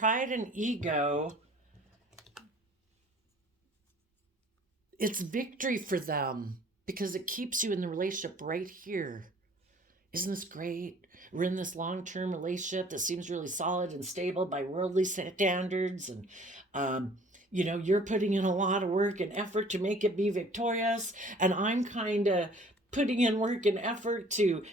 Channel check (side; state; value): both; normal; correlation 0.53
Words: and ego, it's victory for them because it keeps you in the relationship right here. Isn't this great? We're in this long-term relationship that seems really solid and stable by worldly standards. And, you're putting in a lot of work and effort to make it be victorious. And I'm kind of putting in work and effort to